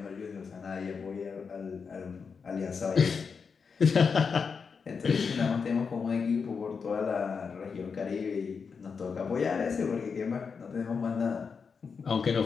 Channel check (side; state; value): right; quieter; 5.6 dB